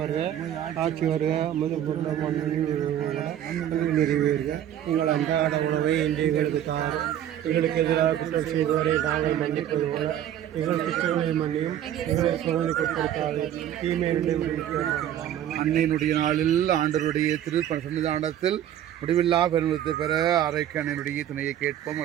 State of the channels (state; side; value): quieter; left; 11.0 dB